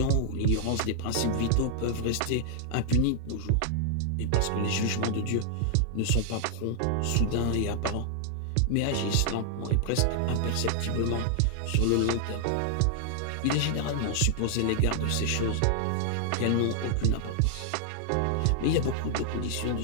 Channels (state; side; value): different; both; correlation 0.00